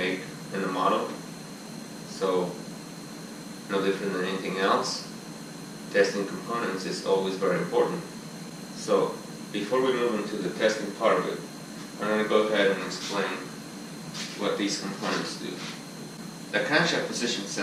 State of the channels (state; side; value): identical; both; correlation 1.00